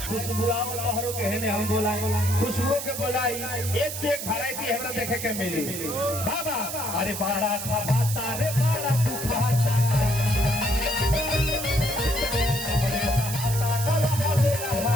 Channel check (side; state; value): right; noise; hiss, 6 dB below the sound